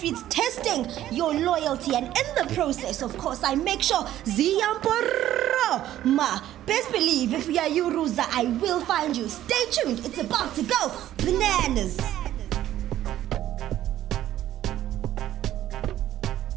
testing your loyalty, and in the process, of course, I make sure Ziyamporo ma. Best believe if we are you, Ruza, I will find you. Stay tuned. It's about to go bananas.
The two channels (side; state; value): left; quieter; 12.9 dB